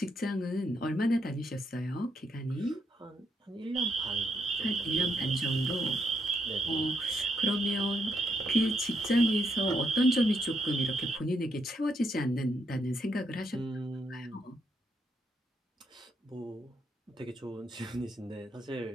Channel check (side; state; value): both; normal; correlation 0.77